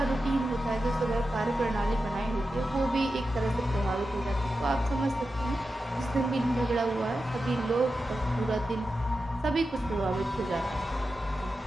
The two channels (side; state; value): both; normal; correlation 0.91